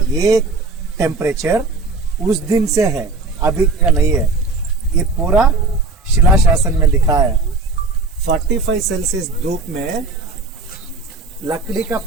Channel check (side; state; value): left; quieter; 3.8 dB